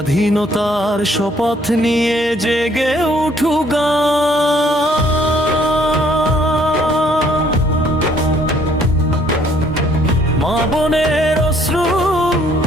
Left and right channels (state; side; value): normal; both; correlation 0.63